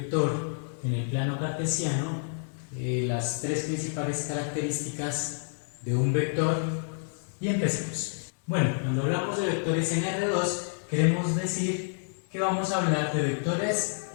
en el plano cartesiano, las tres principales características de un vector y empecemos. Bueno, cuando hablamos de vectores en R2 queremos decir que vamos a hablar de vectores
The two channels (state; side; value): silent; right; digital silence